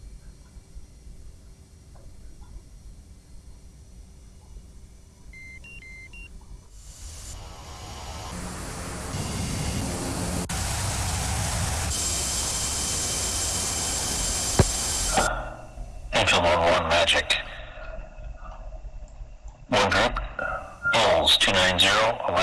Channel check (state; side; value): identical; both; correlation 1.00